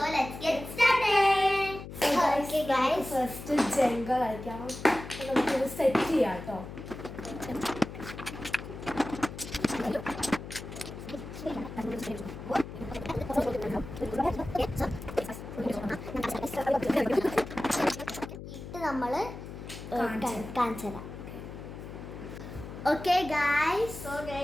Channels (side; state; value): left; noise; hum, 11 dB below the sound